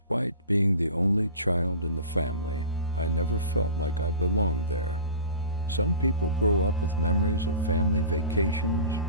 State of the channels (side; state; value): both; inverted; correlation -0.36